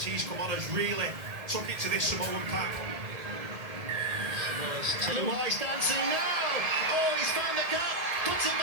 he's come on, has really took it to this Samoan pack. Luai's dancing now. Oh, he's found the gap. Puts it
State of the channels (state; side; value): late; left; 1.8 ms